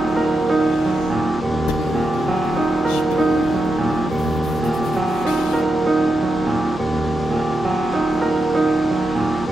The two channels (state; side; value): normal; both; correlation 0.87